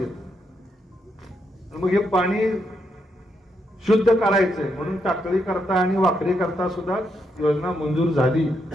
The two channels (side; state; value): both; normal; correlation 0.79